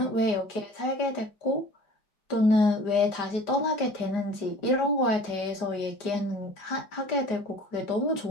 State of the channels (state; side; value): late; right; 5.0 ms